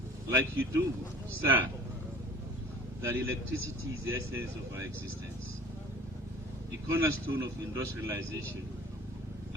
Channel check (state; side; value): normal; both; correlation 0.44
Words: like you do, sir, that electricity is the essence of our existence, the cornerstone of industrialization,